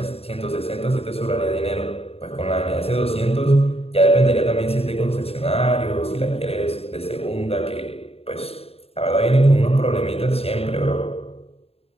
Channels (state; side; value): late; right; 0.29 ms